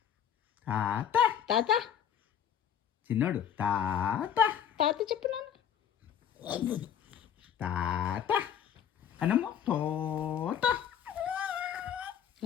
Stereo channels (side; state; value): right; quieter; 9.0 dB